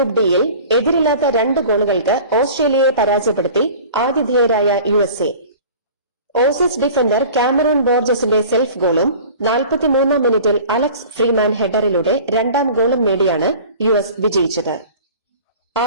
ഡിയിൽ എതിരില്ലാത്ത 2 ഗോളുകൾക്ക് ഓസ്ട്രേലിയയെ പരാജയപ്പെടുത്തി ആതിഥേയരായ USA. ഓസീസ് ഡിഫൻഡർ കാമറൂൺ ബോർജസിന്റെ സെൽഫ് ഗോളും 43-ാം മിനിറ്റിൽ അലക്സ് ഫ്രീമാൻ ഹെഡറിലൂടെ 2ാം ഗോളും നേടിയാണ് US വിജയിച്ചത്.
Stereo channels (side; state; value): both; inverted; correlation -0.43